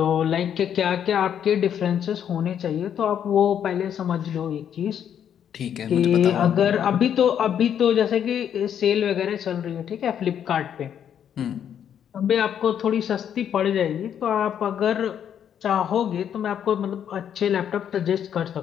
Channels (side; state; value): right; quieter; 9.0 dB